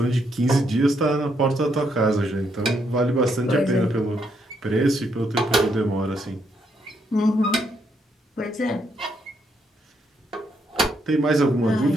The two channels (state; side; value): normal; both; correlation 0.75